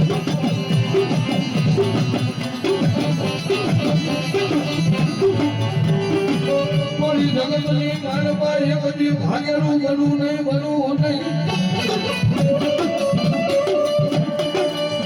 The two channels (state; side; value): identical; both; correlation 1.00